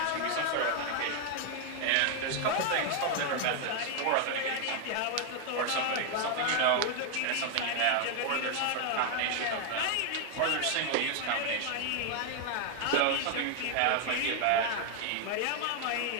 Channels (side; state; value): both; different; correlation 0.01